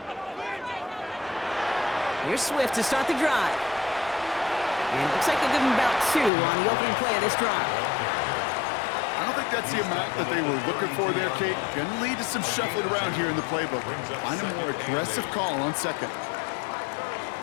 Here's Swift to start the drive. And it looks like they'll give him about 2 on the opening play of this drive. I don't think that's the amount that they were looking for there, Kate. Gonna lead to some shuffling around here in the playbook. Find a more aggressive call on second.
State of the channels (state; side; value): drops out; right; at 6.3 s